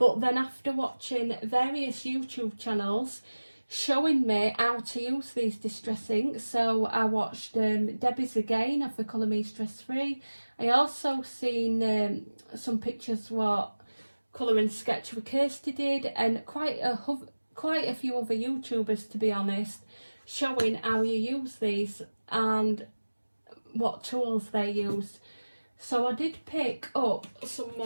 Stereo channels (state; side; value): inverted; both; correlation -1.00